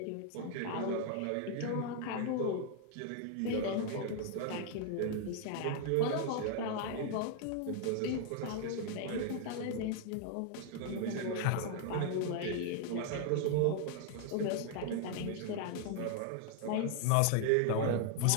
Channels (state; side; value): different; both; correlation 0.00